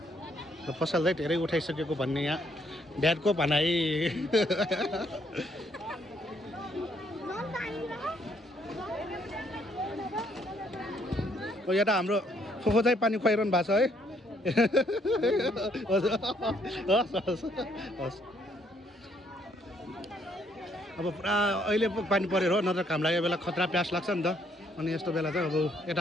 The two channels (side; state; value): both; normal; correlation 0.69